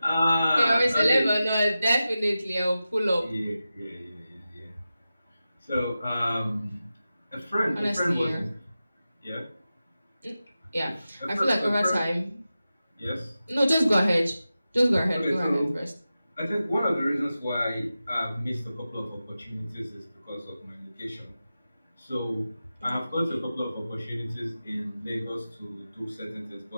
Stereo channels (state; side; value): inverted; both; correlation -0.93